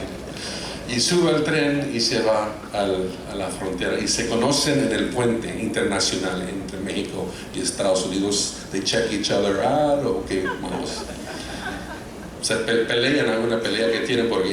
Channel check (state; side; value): identical; both; correlation 1.00